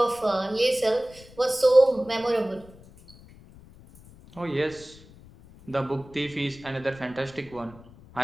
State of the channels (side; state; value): left; noise; rumble, 22 dB below the sound